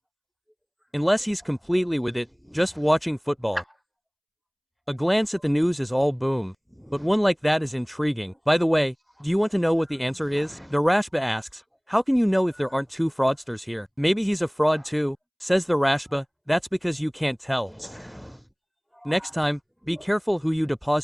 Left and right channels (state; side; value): identical; both; correlation 1.00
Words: Unless he's completely with it, just watching football. A glance at the news is all boom. But one like that is intriguing. By the way, Do you want to know what the answer is? The Rashba asks, how can you know if there aren't two fraudsters here? Maybe he's a fraud too, says the Rashba, that's because you can't tell. Next time, be careful who you